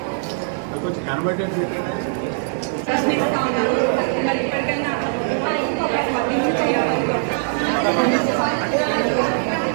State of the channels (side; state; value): left; silent; digital silence